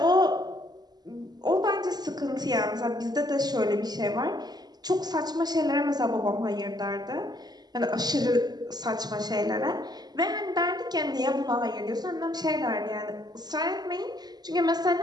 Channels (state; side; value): late; left; 0.20 ms